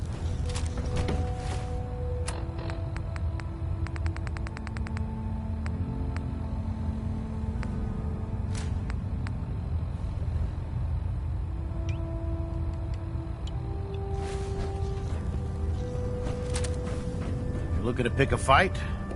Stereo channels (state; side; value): identical; both; correlation 1.00